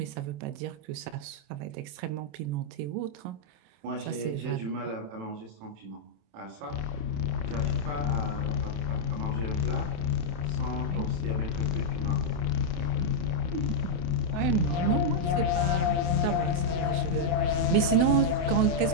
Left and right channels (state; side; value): late; left; 28 ms